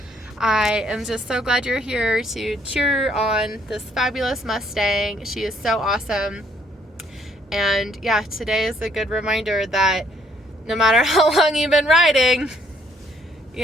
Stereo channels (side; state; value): both; normal; correlation 0.66